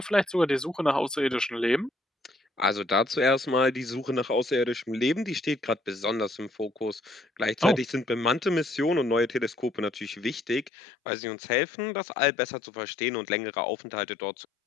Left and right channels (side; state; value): right; drops out; at 10.7 s